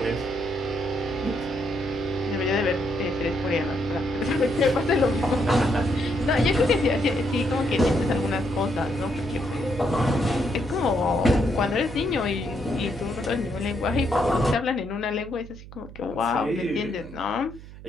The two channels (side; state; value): right; noise; hum, 16 dB below the sound